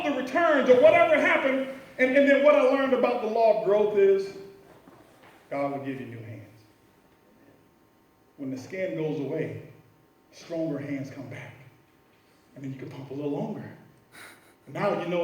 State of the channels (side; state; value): both; identical; correlation 1.00